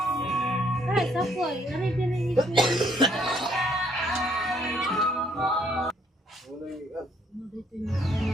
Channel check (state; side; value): normal; both; correlation 0.67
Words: Ay, sako ay. Ari diri ito.